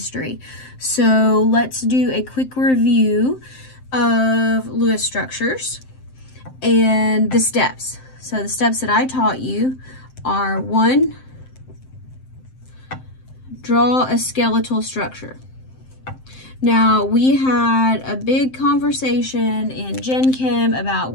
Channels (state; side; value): late; right; 7.7 ms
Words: So let's do a quick review of Lewis structures and the steps. So the steps that I taught you are: 1, draw a skeletal structure. Now, we had a big conversation in Gen Chem about